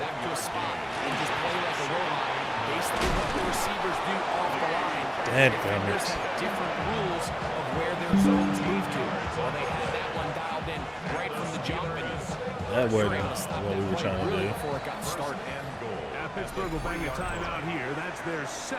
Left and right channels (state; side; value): identical; both; correlation 1.00